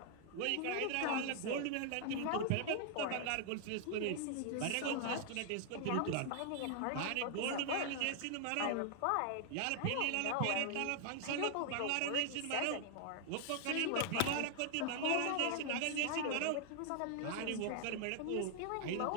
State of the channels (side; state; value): both; different; correlation 0.00